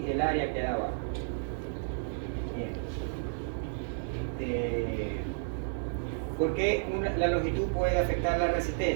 el área queda abajo. Bien. ¿Por qué la longitud puede afectar la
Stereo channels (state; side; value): silent; left; 57 dB below the other